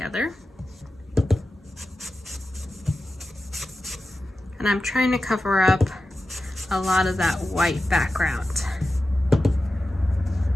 And I'm trying to cover up a lot of that white background.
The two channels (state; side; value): normal; both; correlation 0.93